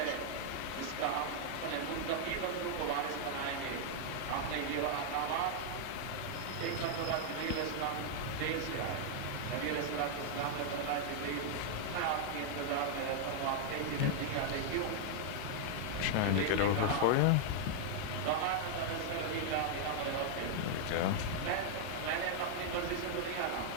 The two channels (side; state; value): both; different; correlation -0.01